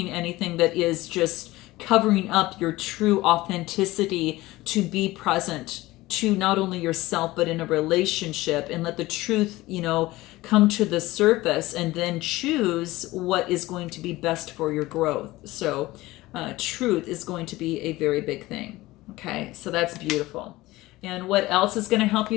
anything that is just covering up your true authenticity, to be present to not only yourself but in a relationship, and let the truth come to the surface, and then choose what is going to be best for your growth. So truth is going to be a very big thing. Okay, so that's beautiful. And what else is going to help you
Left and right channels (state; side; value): quieter; right; 18.6 dB